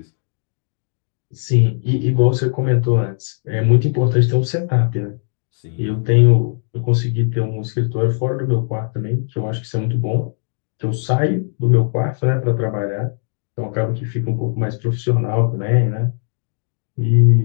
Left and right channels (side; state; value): right; silent; digital silence